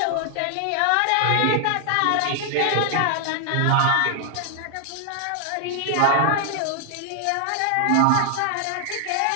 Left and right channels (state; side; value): different; both; correlation 0.00